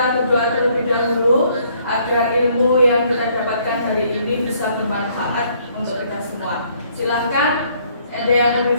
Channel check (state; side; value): inverted; both; correlation -0.65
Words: berdoa terlebih dahulu agar ilmu yang kita dapatkan hari ini bisa bermanfaat untuk kita semua. Silahkan, ada yang